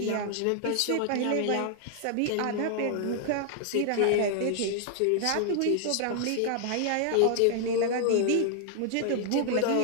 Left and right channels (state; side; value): different; both; correlation 0.00